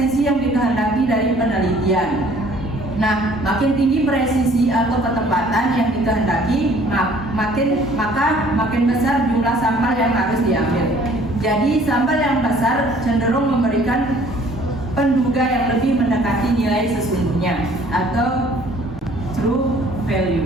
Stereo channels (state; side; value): normal; both; correlation 0.56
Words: yang dikehendaki dari penelitian. Nah, makin tinggi presisi atau ketepatan yang dikehendaki, makin besar jumlah sampel yang harus diambil. Jadi sampel yang besar cenderung memberikan penduga yang lebih mendekati nilai sesungguhnya atau true